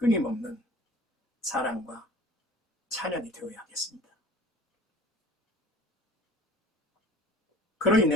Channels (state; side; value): normal; both; correlation 0.45